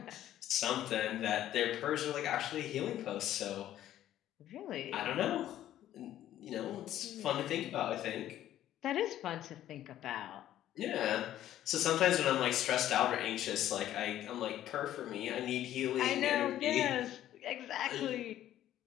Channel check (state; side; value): quieter; right; 12.5 dB